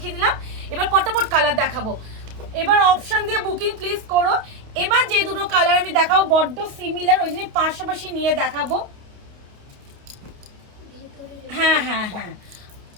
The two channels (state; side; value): late; left; 29 ms